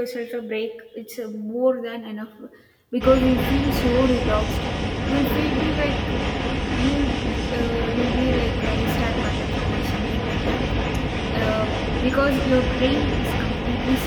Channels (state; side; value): identical; both; correlation 1.00